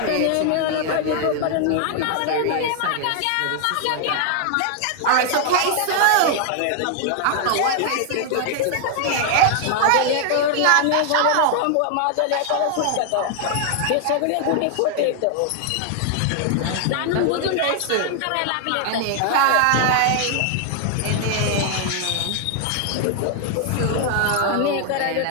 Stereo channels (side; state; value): both; different; correlation 0.00